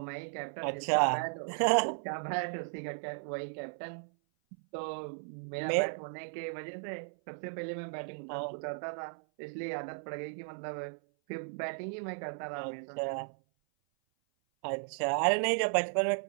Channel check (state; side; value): silent; left; 54 dB below the other